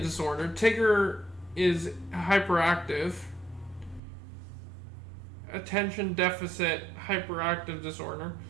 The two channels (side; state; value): left; drops out; at 4.0 s